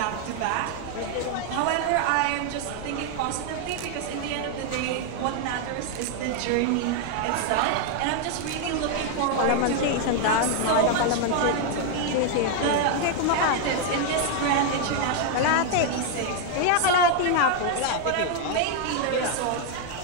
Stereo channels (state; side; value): different; both; correlation 0.00